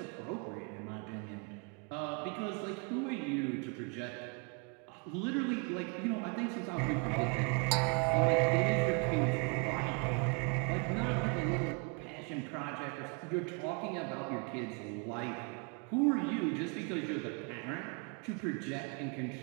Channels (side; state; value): left; quieter; 34.3 dB